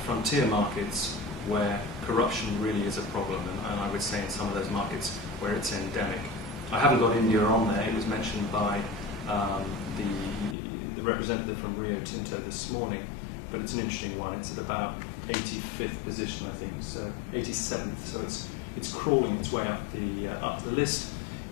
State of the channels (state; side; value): drops out; right; at 10.6 s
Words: frontier markets where corruption really is a problem, and I would say in some of those markets where it's endemic. I haven't got India on there. It was mentioned by the representative from Rio Tinto this morning, but it's an interesting one. It's at about 85th position, I think, so 87th, so it's crawling its way up the list.